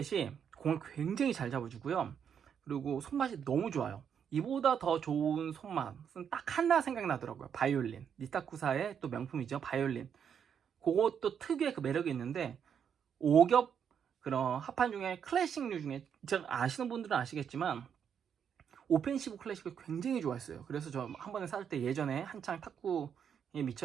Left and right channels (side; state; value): left; quieter; 7.8 dB